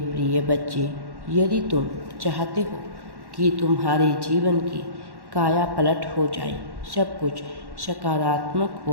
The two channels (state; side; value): late; left; 1.1 ms